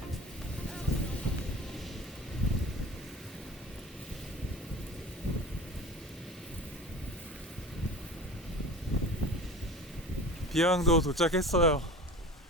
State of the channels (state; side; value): normal; both; correlation 0.36